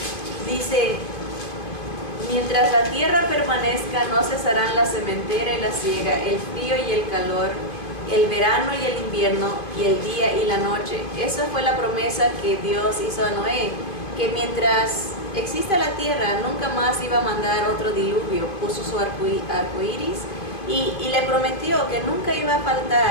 dice, mientras la tierra permanezca no cesarán la sementera y la siega, el frío y el calor, el verano y el invierno, y el día y la noche. Esa fue la promesa que Dios hizo a Noé, que mientras exista la tierra nunca más iba a mandar otro diluvio. Puso su arco iris y le prometió que nunca iba a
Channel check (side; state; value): right; late; 2.5 ms